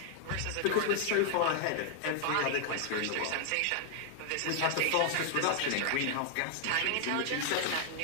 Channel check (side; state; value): both; different; correlation 0.00